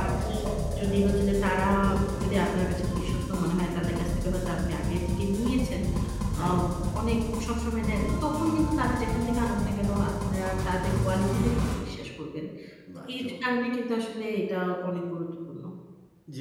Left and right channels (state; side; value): identical; both; correlation 1.00